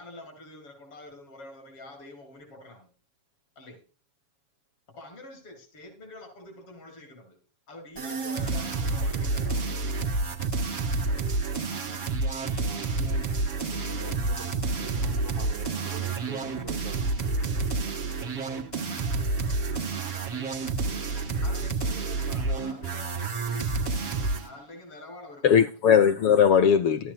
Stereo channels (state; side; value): late; right; 7.2 ms